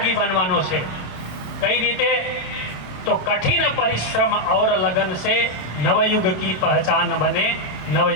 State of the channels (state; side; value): late; right; 27 ms